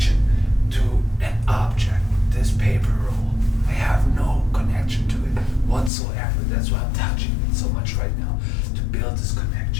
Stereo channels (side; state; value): right; drops out; at 5.9 s